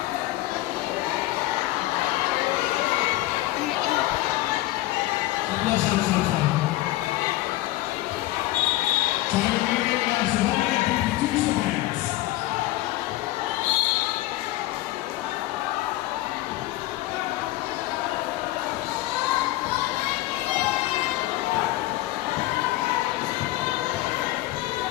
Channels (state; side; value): quieter; right; 17.0 dB